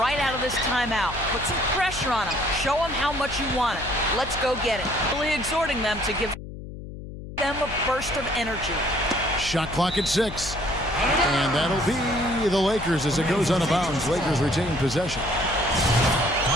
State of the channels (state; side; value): noise; left; hum, 11 dB below the sound